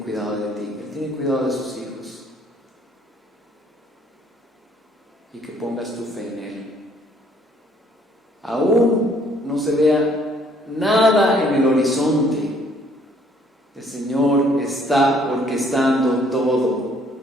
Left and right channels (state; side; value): normal; both; correlation 0.63